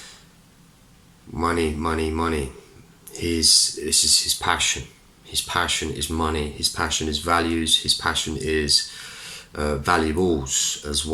money. This is his passion. His passion is money. His passion is values. His passion is valuables as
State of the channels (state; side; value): identical; both; correlation 1.00